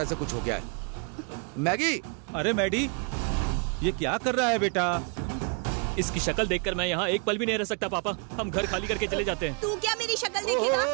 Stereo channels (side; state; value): left; quieter; 39.0 dB